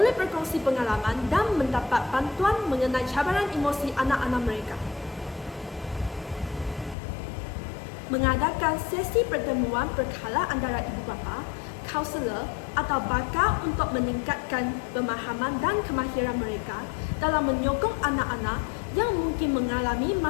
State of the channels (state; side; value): drops out; right; at 7.0 s